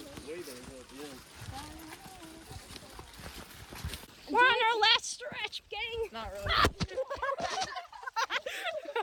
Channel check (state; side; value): identical; both; correlation 1.00